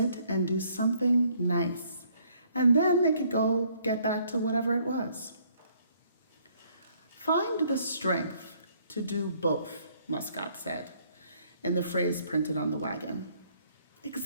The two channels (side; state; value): both; inverted; correlation -0.65